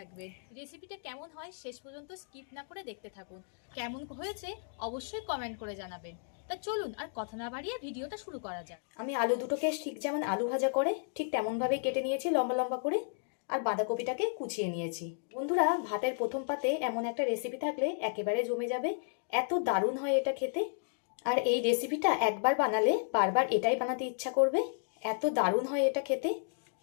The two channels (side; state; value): right; silent; digital silence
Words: রেসিপিটা কেমন হয় শেষ পর্যন্ত স্কিপ না করে দেখতে থাকুন। কেমন হয়েছে অবশ্যই কমেন্ট করে জানাবেন। তা চলুন আর কথা না বাড়িয়ে ভিডিওটা শুরু করা যাক। আমি আলু দুটোকে ঠিক যেমন আলু ভাজা করে ঠিক তেমনভাবেই কেটে নিয়েছি লম্বা লম্বা করে, আর বাঁধাকপিটাকে কুচিয়ে নিয়েছি। বন্ধুরা, ভাতের প্রথম পাতে এমন একটা রেসিপি থাকলে একেবারে জমে যাবে, এত দারুণ হয় এটা খেতে। আর এই রেসিপিটা একবার বানালে বারবার এটাই বানাতে ইচ্ছা করবে, এত দারুণ হয় এটা খেতে।